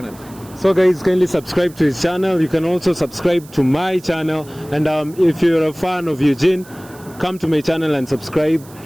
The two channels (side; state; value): right; noise; hiss, 23 dB below the sound